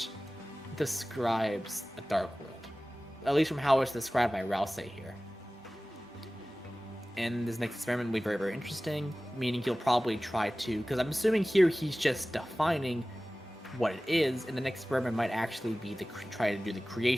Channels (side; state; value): both; normal; correlation 0.97